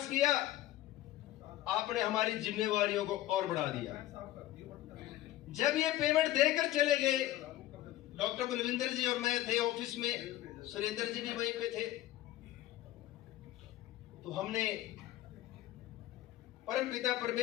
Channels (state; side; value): quieter; right; 14.8 dB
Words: किया, आपने हमारी जिम्मेवारियों को और बढ़ा दिया। जब ये पेमेंट देकर चले गए, डॉक्टर बलविंदर जी और मैं थे ऑफिस में, सुरेंद्र जी भी वहीं पे थे, तो हमने परमपिता